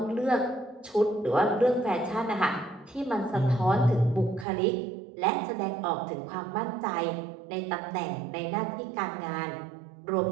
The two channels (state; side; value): drops out; left; at 4.5 s